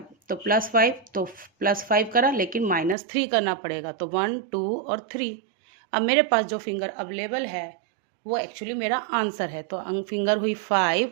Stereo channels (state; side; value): drops out; left; at 3.0 s